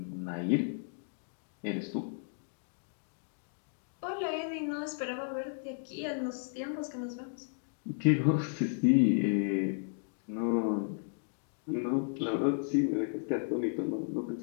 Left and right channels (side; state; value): right; silent; digital silence